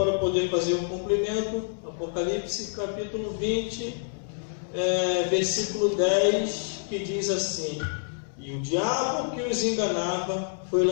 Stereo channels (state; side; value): silent; right; digital silence